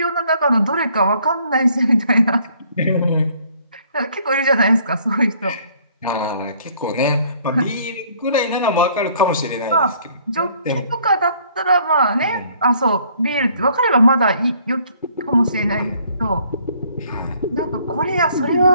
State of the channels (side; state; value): both; inverted; correlation -0.62